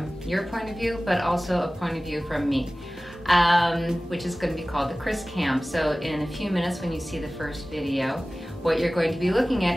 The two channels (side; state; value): both; normal; correlation 0.97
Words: your point of view, but also a point of view from me, which is going to be called the Kris Cam. So in a few minutes when you see the first video, what you're going to be looking